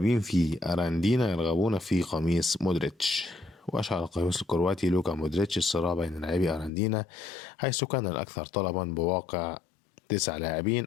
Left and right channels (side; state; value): right; drops out; at 6.7 s